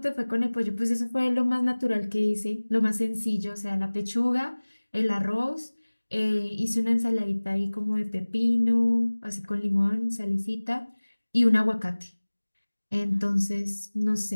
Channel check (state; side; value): inverted; both; correlation -1.00